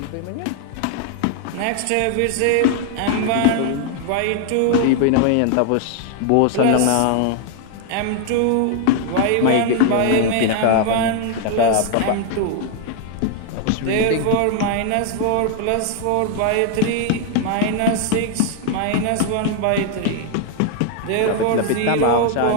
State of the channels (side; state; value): both; different; correlation 0.00